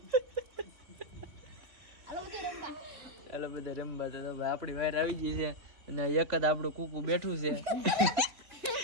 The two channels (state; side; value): late; left; 3.7 ms